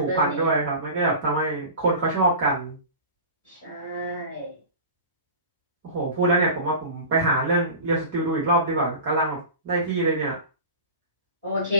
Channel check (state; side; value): inverted; both; correlation -0.34